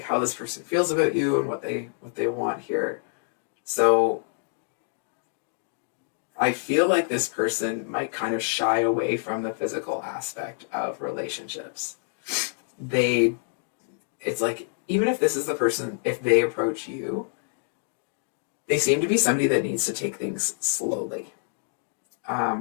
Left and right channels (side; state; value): right; silent; digital silence